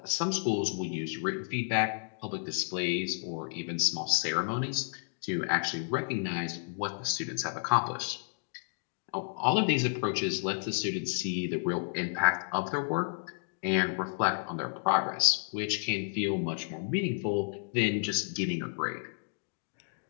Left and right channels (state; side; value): silent; right; digital silence